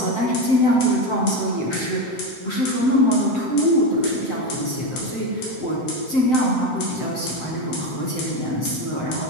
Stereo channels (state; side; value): late; right; 7.8 ms